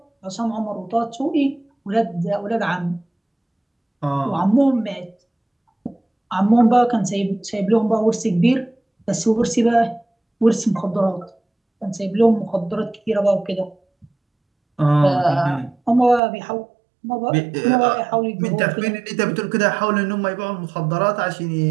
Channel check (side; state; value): left; drops out; at 16.2 s